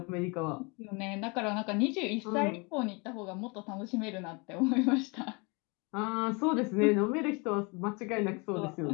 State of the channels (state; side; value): quieter; right; 29.9 dB